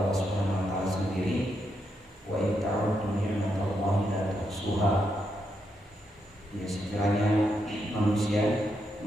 Subhanahu wa taala sendiri, wa in ta'uddu ni'matallahi la tuhsuha. Ya, sekiranya manusia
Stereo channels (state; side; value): normal; both; correlation 0.81